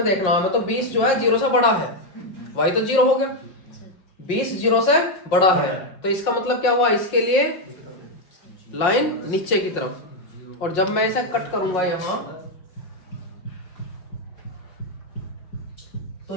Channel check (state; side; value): late; right; 5.5 ms